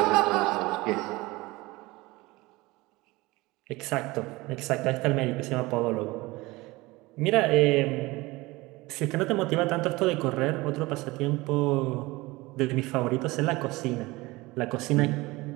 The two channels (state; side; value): quieter; left; 21.4 dB